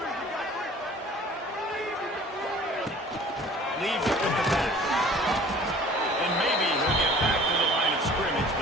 Leaves it with the back. And maybe he'll get back to the line of scrimmage,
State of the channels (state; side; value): normal; both; correlation 0.48